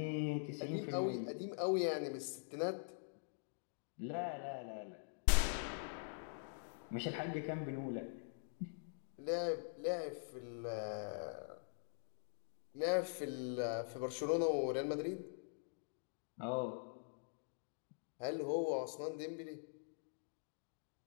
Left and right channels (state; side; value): silent; right; digital silence